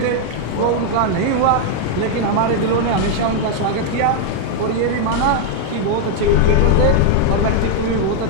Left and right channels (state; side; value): different; both; correlation 0.00